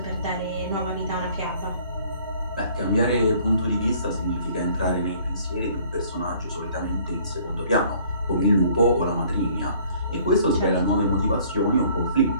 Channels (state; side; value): inverted; both; correlation -0.57